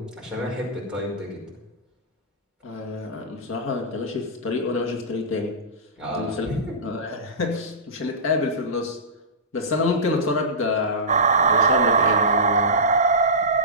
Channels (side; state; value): both; normal; correlation -0.20